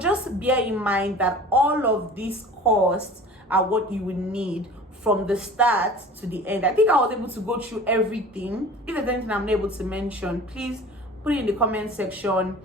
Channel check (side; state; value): both; normal; correlation 0.41